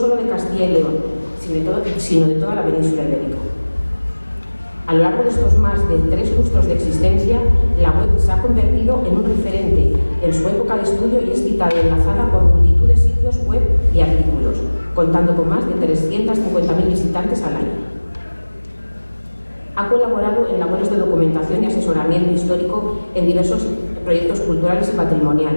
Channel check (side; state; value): both; inverted; correlation -1.00